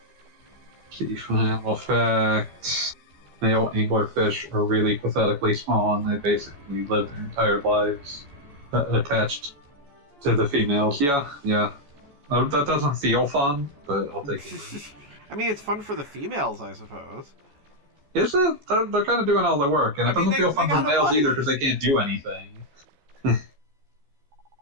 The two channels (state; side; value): late; left; 14 ms